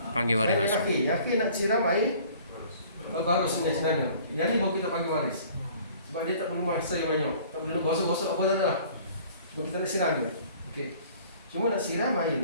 Panggil waris masuk. Yang akhir nak siram air baru sungai sebenarnya. Yang ni baru kita panggil waris. Sebab dia tak perlu masa yang banyak. Tak perlu gosok-gosok apa dah lah. Sebab kita nak siram je. Okey. Cuma nak siram air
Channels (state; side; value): inverted; both; correlation -0.51